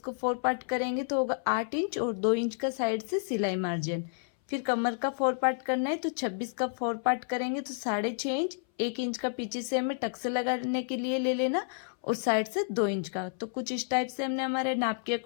को 4 पार्ट करेंगे तो होगा 8 इंच और 2 इंच का साइड से सिलाई मार्जिन। फिर कमर का 4 पार्ट करना है तो 26 का 4 पार्ट करेंगे तो 6.5 इंच, 1 इंच का पीछे से हमें टक्स लगाने के लिए ले लेना और साइड से 2 इंच का। तो कुछ इस टाइप से हमने हमारे नाप के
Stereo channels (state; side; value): silent; right; 58 dB below the other